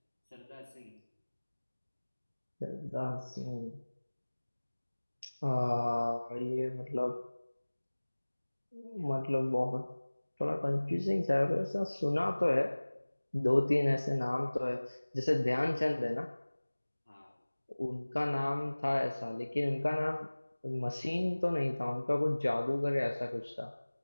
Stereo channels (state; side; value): inverted; both; correlation -1.00